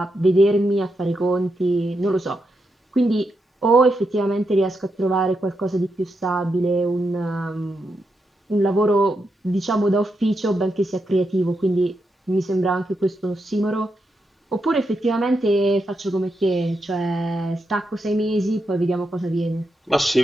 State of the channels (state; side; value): normal; both; correlation 0.84